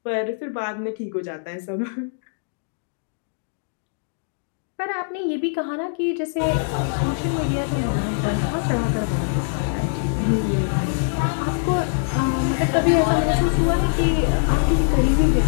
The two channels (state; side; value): silent; right; digital silence